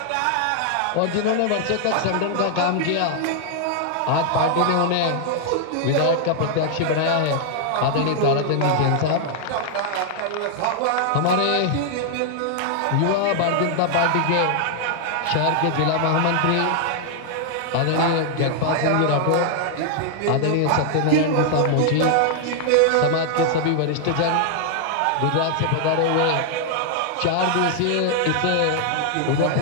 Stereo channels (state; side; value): different; both; correlation 0.00